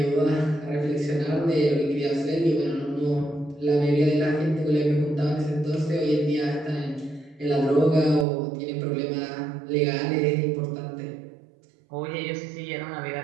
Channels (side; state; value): left; drops out; at 8.2 s